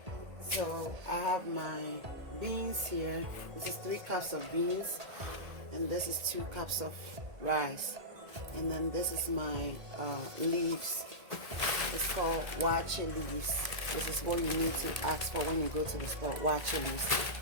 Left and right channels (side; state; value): left; late; 1.8 ms